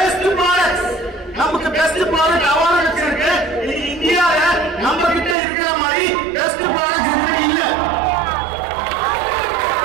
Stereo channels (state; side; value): drops out; left; at 5.4 s